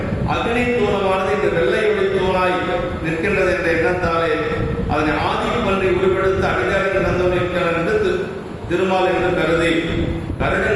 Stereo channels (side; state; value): both; identical; correlation 1.00